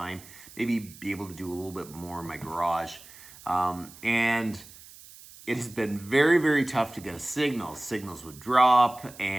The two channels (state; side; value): noise; right; hiss, 20 dB below the sound